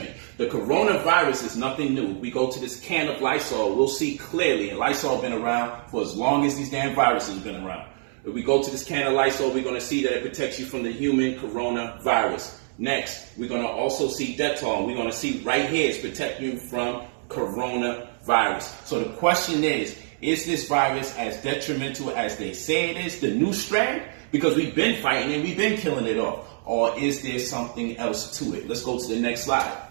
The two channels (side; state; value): left; silent; digital silence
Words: The coronavirus is nothing new. We go to this can of Lysol, we'll see clearly, and Lysol been around for as long as these damn viruses have been around. If we go to this can of Lysol, we're going to see that it protects you from the human coronavirus. Next, we're going to also see Dettol, and we're going to see right here it's protecting you from coronavirus. So the question is this virus as detrimental as they say it is, the new strand? Because we've been fighting and we've been killing it off. Or is there something else to it? Let's go to the next slide.